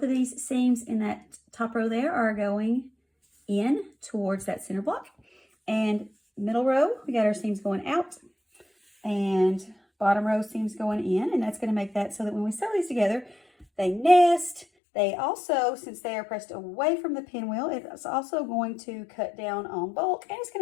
of these seams in that top row there are going in towards that center block. And middle row, we got our seams going out, and bottom row seams going in, and that's going to make that so that when we sew these together, they nest. They also, since they are pressed away from the pinwheel, it's also going to cut down on bulk, and it's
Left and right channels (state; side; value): drops out; right; at 14.7 s